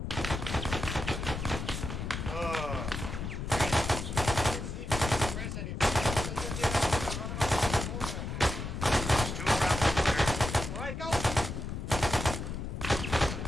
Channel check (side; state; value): left; noise; rumble, 5 dB below the sound